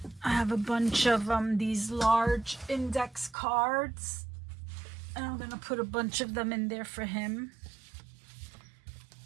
I have a bunch of these large index cards. And I'm gonna put a bunch of them in there for him.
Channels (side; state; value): left; drops out; at 3.4 s